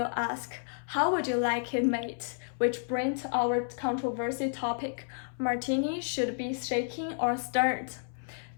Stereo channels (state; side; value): silent; right; 57 dB below the other